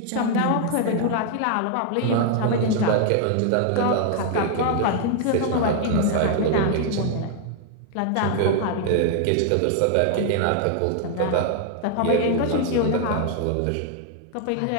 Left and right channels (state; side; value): different; both; correlation 0.00